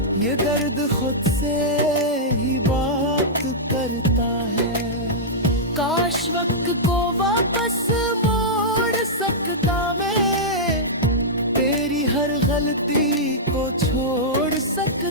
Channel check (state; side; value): normal; both; correlation -0.10